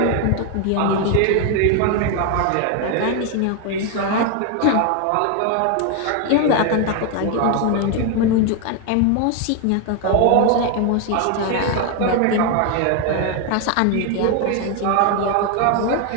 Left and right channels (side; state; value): both; different; correlation 0.01